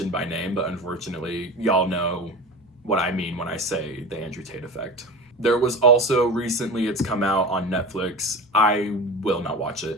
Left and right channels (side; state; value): both; normal; correlation 0.31